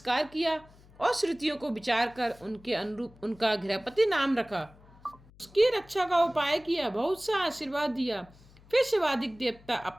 किया और श्रुतियों को विचार कर उनके अनुरूप उनका गृहपति नाम रखा। उसकी रक्षा का उपाय किया, बहुत सा आशीर्वाद दिया। फिर शिवादिक देवता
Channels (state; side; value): noise; left; hum, 25 dB below the sound